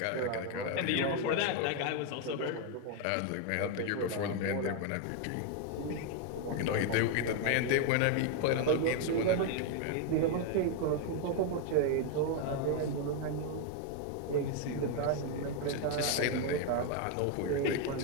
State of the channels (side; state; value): both; different; correlation 0.01